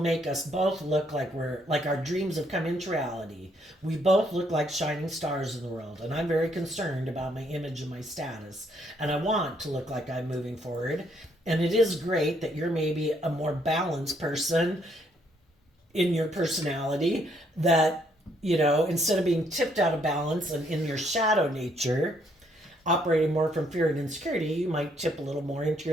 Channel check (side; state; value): both; normal; correlation 0.70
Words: us both look like our dreams have come into reality. We both look like shining stars in the world, and I'm very concerned about my image and my status, and I want to look like I'm moving forward. And it is great that you're maybe a more balanced person in your personality, that instead of being tipped out of balance and in your shadow nature, operating more from fear and insecurity, you might tip a little more into